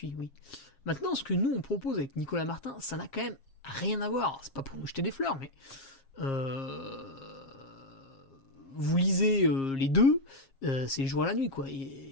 oui. Maintenant, ce que nous, on propose avec Nicolas Martin, ça n'a quand même rien à voir. C'est pas pour nous jeter des fleurs, mais... vous lisez les deux, c'est le jour à la nuit, quoi.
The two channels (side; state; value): right; late; 7.4 ms